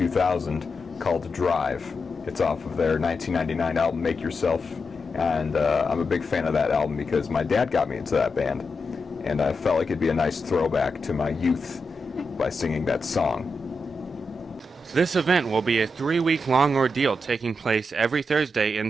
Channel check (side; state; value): both; normal; correlation 0.87